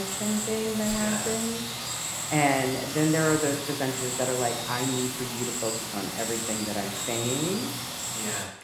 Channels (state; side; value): identical; both; correlation 1.00